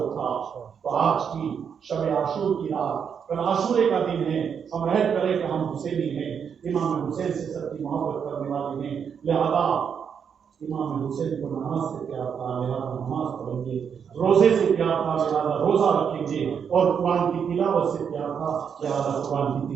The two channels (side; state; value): left; quieter; 7.2 dB